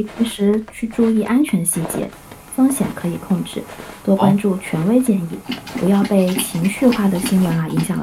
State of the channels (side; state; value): both; identical; correlation 1.00